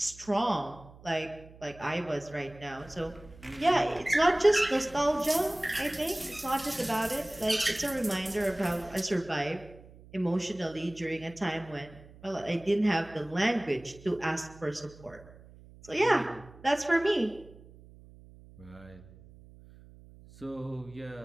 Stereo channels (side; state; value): right; noise; hum, 21 dB below the sound